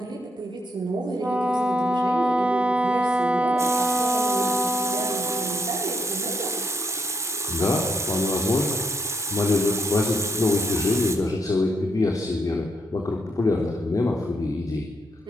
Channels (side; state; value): both; normal; correlation 0.77